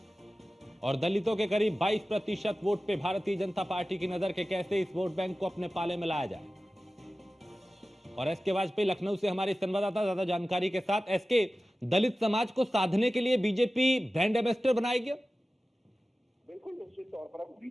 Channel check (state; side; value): normal; both; correlation 0.96